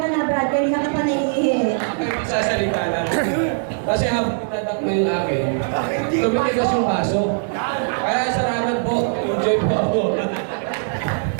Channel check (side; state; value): left; silent; 65 dB below the other